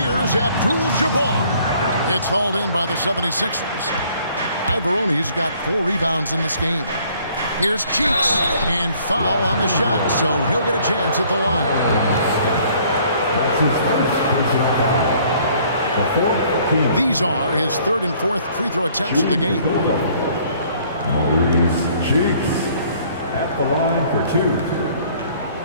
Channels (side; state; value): both; inverted; correlation -0.59